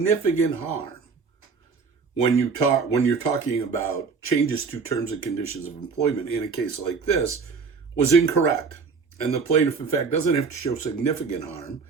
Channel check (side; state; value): left; quieter; 5.1 dB